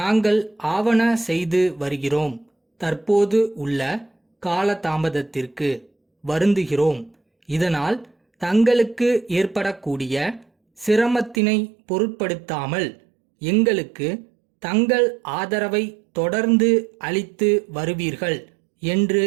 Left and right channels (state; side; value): drops out; left; at 11.4 s